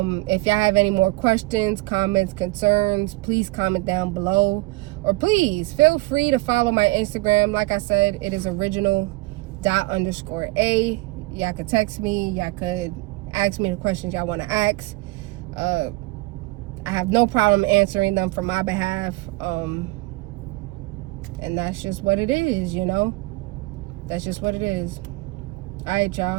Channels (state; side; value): quieter; left; 22.5 dB